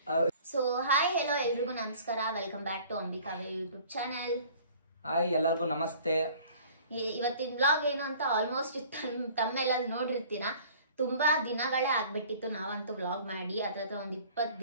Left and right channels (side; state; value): both; inverted; correlation -0.50